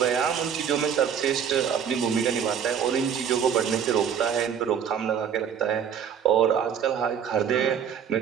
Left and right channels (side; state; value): left; quieter; 7.9 dB